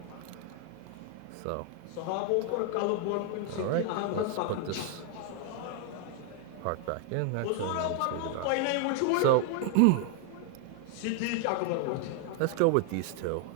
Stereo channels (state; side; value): different; both; correlation 0.00